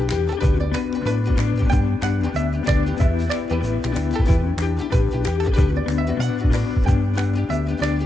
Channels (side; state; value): both; normal; correlation 0.87